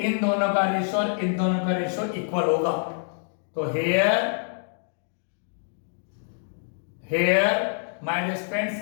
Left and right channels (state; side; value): silent; right; digital silence